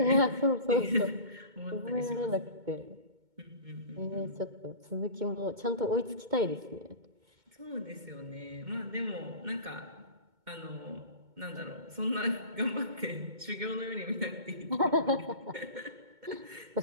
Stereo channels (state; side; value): late; left; 2.2 ms